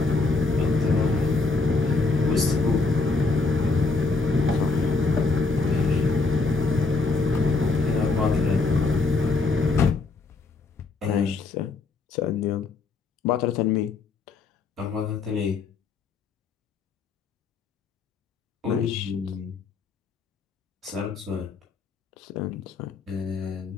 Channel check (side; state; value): right; quieter; 3.9 dB